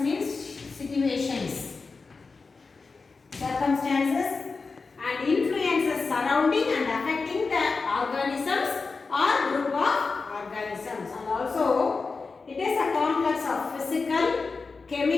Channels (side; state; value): right; quieter; 4.3 dB